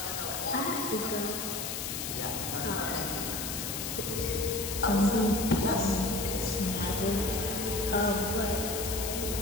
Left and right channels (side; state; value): left; noise; hiss, 4 dB below the sound